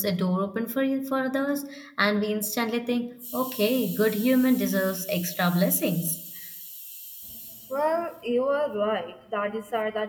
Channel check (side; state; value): both; identical; correlation 1.00